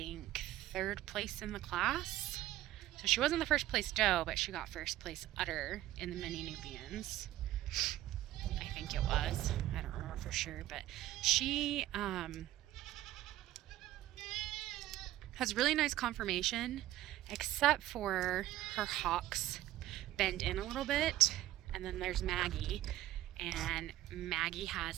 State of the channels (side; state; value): left; quieter; 14.8 dB